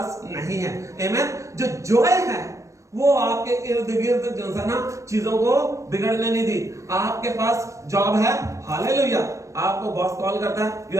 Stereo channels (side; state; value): left; late; 0.15 ms